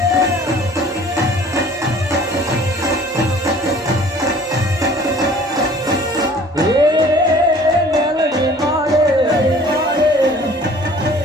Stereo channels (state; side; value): normal; both; correlation 0.50